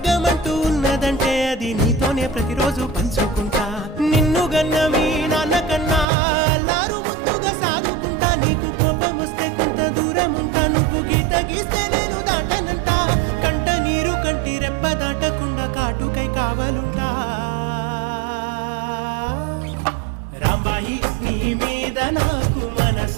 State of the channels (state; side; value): drops out; left; at 6.1 s